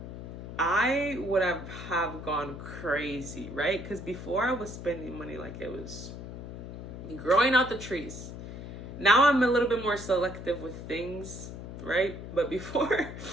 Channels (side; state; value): left; noise; hum, 10 dB below the sound